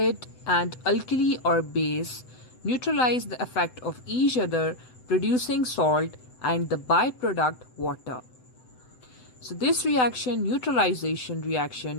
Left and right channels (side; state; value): right; late; 7.9 ms